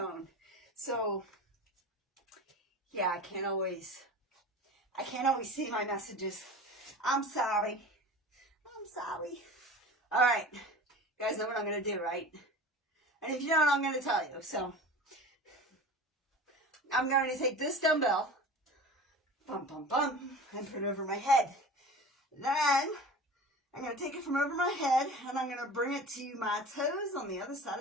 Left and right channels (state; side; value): normal; both; correlation 0.36